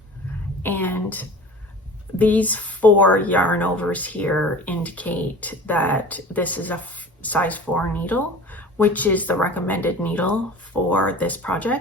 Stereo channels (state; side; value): normal; both; correlation 0.40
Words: And these 4 yarn overs here indicate that this is a size 4 needle, which is the recommended needle for this